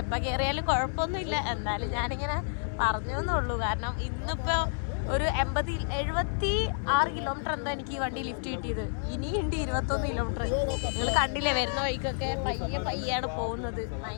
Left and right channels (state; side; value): silent; right; 58 dB below the other